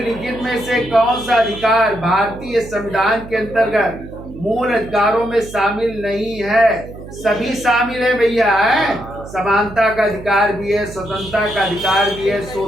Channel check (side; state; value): right; noise; hum, 15 dB below the sound